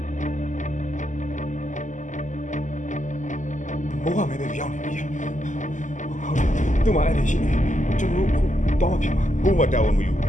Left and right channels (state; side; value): late; right; 0.36 ms